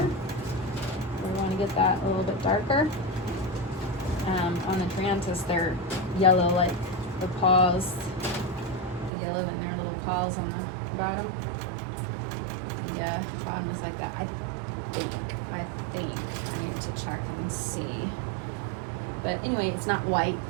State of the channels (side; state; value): left; drops out; at 9.1 s